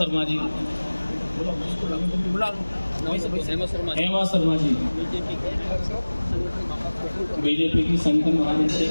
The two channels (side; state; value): both; inverted; correlation -1.00